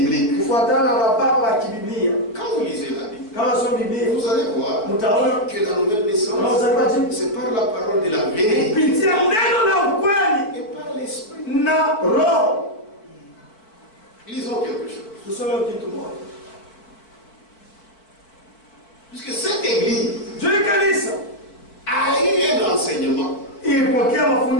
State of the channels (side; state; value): right; late; 4.6 ms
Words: kufuatana na baba wa kibiblia. Quand vous lisez la Bible, Kama sio Biblia, vous allez voir mtaona que la nouvelle kama naissance, kuzaliwa jipya c'est par la parole de la vérité kupitia neno la ukweli et par l'esprit. na roho. Lisons quelque chose. Tusome kitu moja. Puisque cette église Juu kanisa a eu un enseignement ilipokea